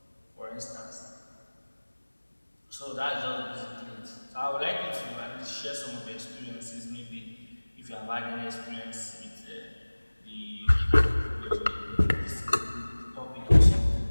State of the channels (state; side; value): inverted; both; correlation -1.00